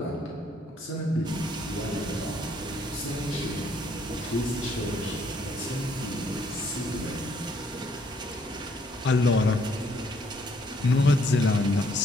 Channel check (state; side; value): normal; both; correlation 0.67